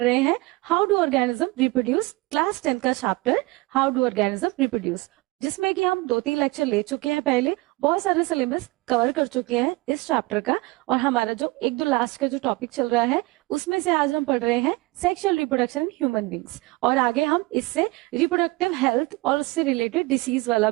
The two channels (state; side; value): quieter; left; 22.5 dB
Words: हैं how do organism reproduce, class 10 का chapter how do organism reproduce, जिसमें कि हम 2-3 लेक्चर ले चुके हैं पहले। बहुत सारे सिलेबस कवर कर चुके हैं इस चैप्टर का। और हमारा जो 1-2 लास्ट का जो टॉपिक चल रहा है उसमें से आज हम पढ़ रहे हैं sexual reproduction in human beings. और आगे हम इससे रिप्रोडक्टिव हेल्थ और उससे रिलेटेड डिसीज वाला